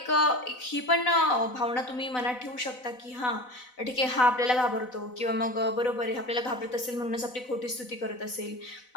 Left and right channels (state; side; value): late; right; 4.0 ms